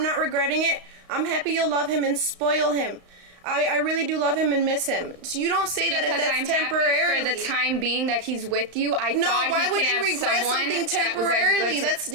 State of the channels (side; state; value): left; late; 35 ms